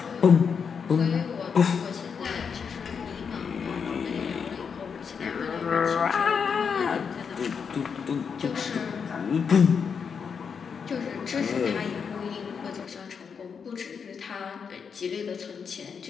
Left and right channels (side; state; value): right; quieter; 6.3 dB